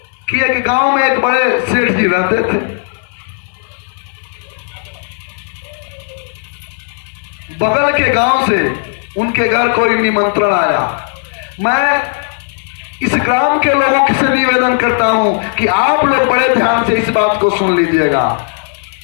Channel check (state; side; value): silent; right; 61 dB below the other